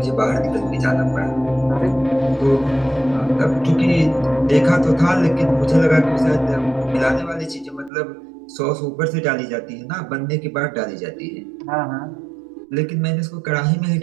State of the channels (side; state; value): left; drops out; at 7.9 s